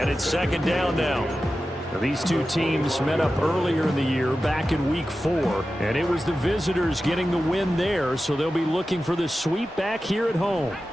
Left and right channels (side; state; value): both; normal; correlation 0.93